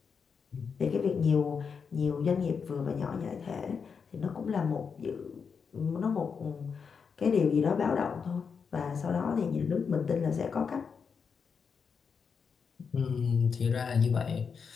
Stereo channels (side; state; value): right; quieter; 6.0 dB